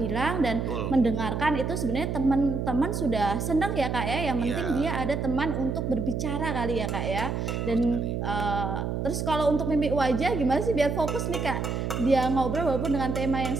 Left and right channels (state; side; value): noise; right; hum, 2 dB below the sound